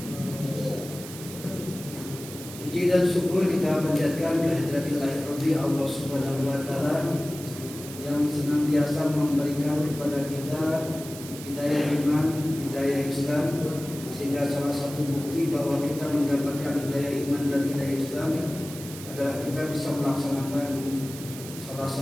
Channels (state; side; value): noise; right; hiss, 13 dB below the sound